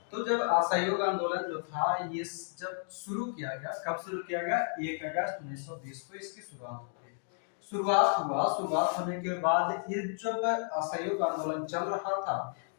तो जब असहयोग आंदोलन जो था ये जब शुरू किया गया, कब शुरू किया गया, 1 अगस्त 1920 को इसकी शुरुआत हो गई। शुरुआत होने के बाद ये जब असहयोग आंदोलन चल रहा था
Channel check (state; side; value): silent; right; digital silence